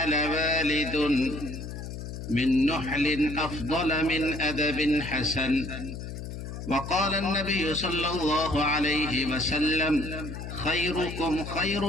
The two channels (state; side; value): noise; left; hum, 8 dB below the sound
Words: والد من نحل أفضل من أدب حسن وقال النبي صلى الله عليه وسلم خيركم